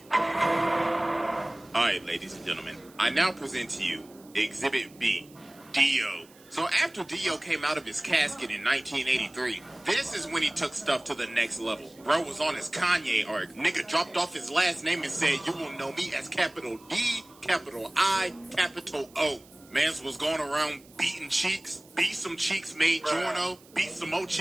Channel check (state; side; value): noise; right; hiss, 26 dB below the sound